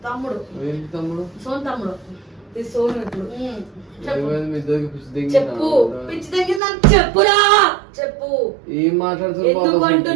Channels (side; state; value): left; drops out; at 6.6 s